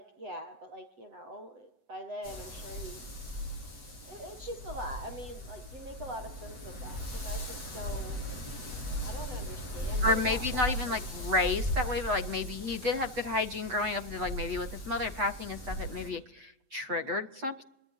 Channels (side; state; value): left; late; 7.9 ms